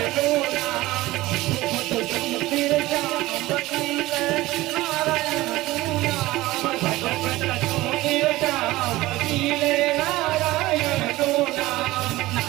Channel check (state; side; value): quieter; left; 18.2 dB